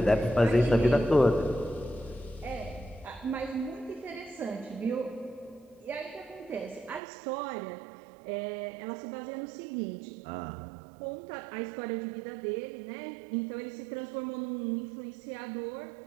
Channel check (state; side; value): drops out; left; at 7.0 s